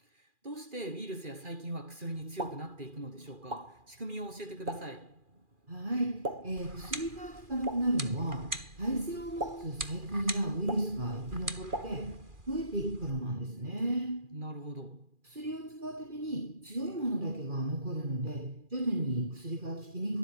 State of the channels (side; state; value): left; late; 2.4 ms